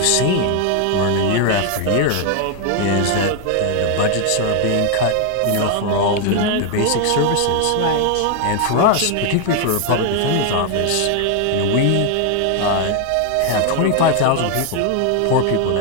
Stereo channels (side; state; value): both; different; correlation 0.00